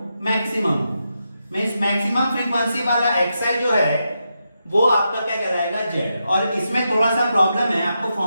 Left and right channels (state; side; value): inverted; both; correlation -0.86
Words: मैक्सिमम, मींस मैक्सिमम फ्रीक्वेंसी वाला xi जो है वो आपका क्या कहलाएगा, z। और इसमें थोड़ा सा प्रॉब्लम है, आपको